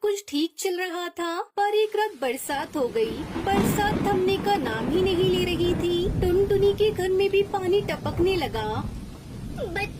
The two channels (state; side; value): identical; both; correlation 1.00